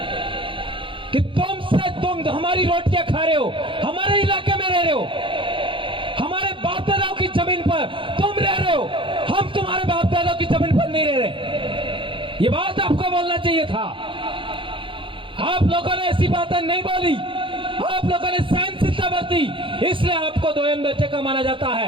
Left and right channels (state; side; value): late; left; 0.25 ms